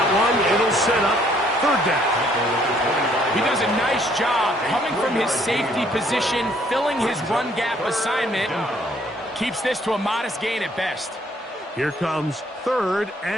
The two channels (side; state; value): both; normal; correlation 0.64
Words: one. It'll set up third down. He does a nice job coming from his safety position, filling his run gap assignment, and keeps this to a modest gain at best. Here comes 3rd